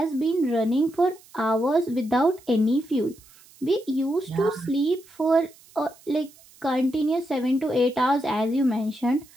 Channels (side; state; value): right; noise; hiss, 26 dB below the sound